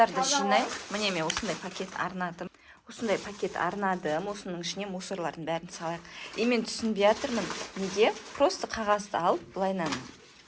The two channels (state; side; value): identical; both; correlation 1.00